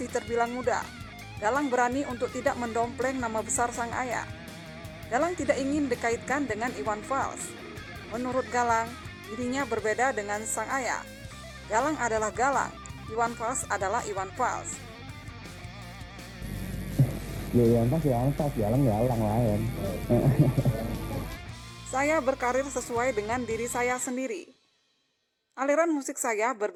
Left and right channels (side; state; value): both; identical; correlation 1.00